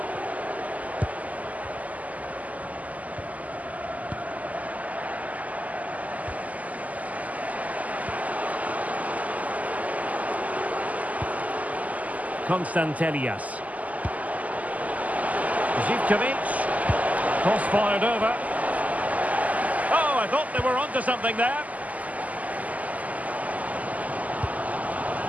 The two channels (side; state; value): left; late; 0.075 ms